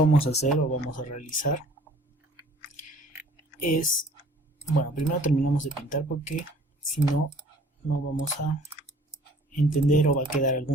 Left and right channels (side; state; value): both; normal; correlation 0.53